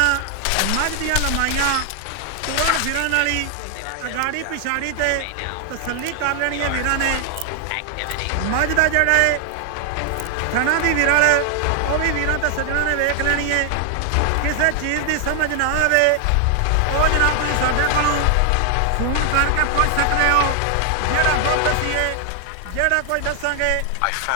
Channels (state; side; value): different; both; correlation 0.00